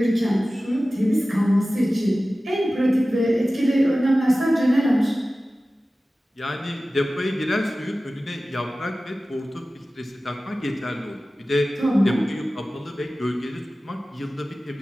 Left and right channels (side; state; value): both; normal; correlation 0.96